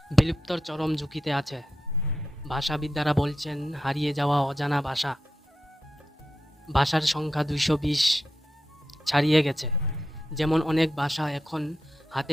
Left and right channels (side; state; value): both; normal; correlation 0.88